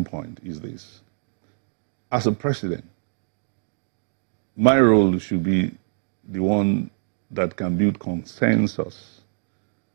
point is this. As a president, my role should be the one that can build consensus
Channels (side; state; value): left; silent; digital silence